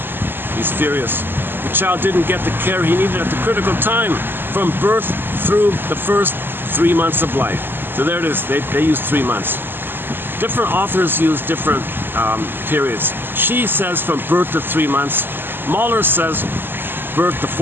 He's furious. The child didn't get the care he needed at the critical time from birth through the first 3 months of life. So there it is. They use 3 months. Different authors use different periods. She says from birth to 3 months. Mahler says birth to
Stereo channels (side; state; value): left; late; 0.096 ms